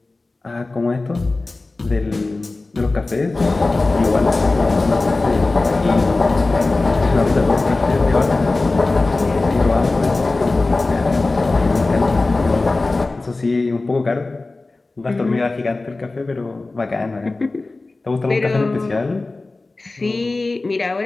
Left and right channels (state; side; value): quieter; right; 3.3 dB